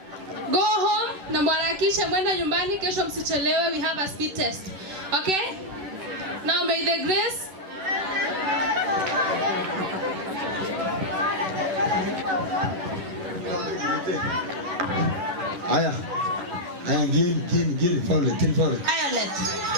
Go home na mwarakishe mwenda nyumbani, kesho msichelewe. We have a speed test. Okay? Now may the grace. Aya, gini, Violet. Violet.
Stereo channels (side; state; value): left; late; 11 ms